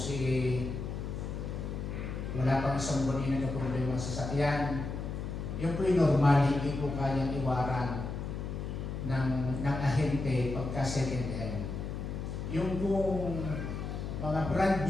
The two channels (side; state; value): left; noise; hum, 5 dB below the sound